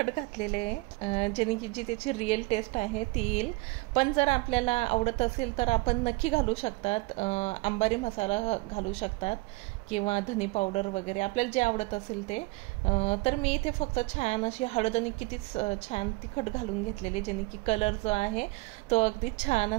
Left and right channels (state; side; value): quieter; left; 24.2 dB